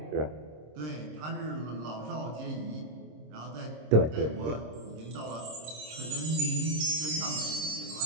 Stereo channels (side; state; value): left; late; 26 ms